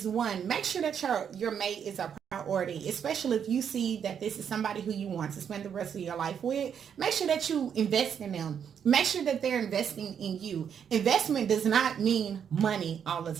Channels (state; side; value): quieter; left; 8.0 dB